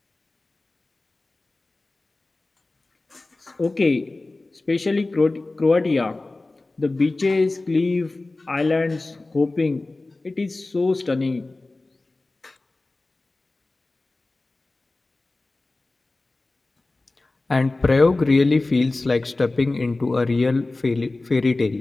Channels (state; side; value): quieter; right; 3.1 dB